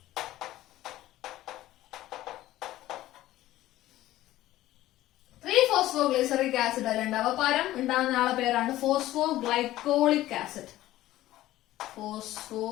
ഫോസ്ഫോഗ്ലിസറിക് ആസിഡ് അല്ല ഉണ്ടാവുക, പകരം ഉണ്ടാകുന്ന ആളെ പേരാണ് ഫോസ്ഫോഗ്ലൈക്കോളിക് ആസിഡ്.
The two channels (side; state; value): right; quieter; 15.2 dB